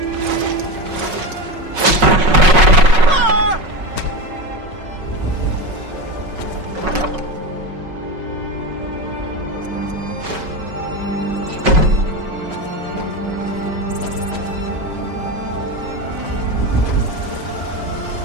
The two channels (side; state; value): left; late; 5.4 ms